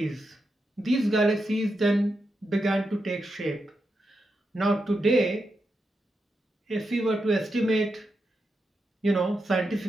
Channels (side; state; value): both; normal; correlation 0.86